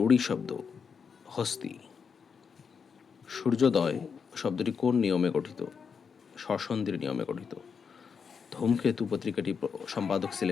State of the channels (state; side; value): quieter; right; 6.2 dB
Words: শব্দ? হস্তি। সূর্যোদয় শব্দটি কোন নিয়মে গঠিত? স্বরসন্ধির নিয়মে গঠিত। ধূমকেতু পত্রিকাটি সম্পাদক